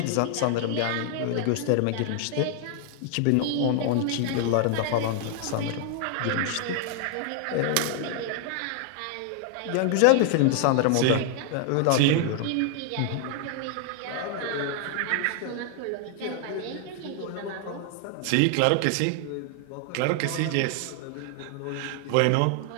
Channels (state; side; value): different; both; correlation 0.00